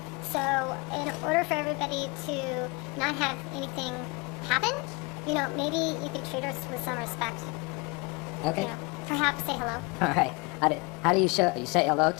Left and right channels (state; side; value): quieter; right; 28.0 dB